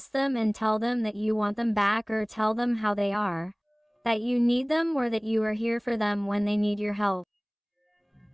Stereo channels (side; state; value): both; identical; correlation 1.00